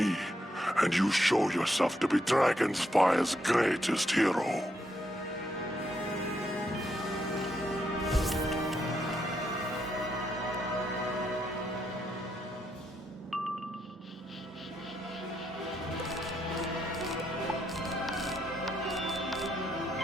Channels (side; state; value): both; normal; correlation 0.79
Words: and you show yourself to be Dragonspire's greatest hero.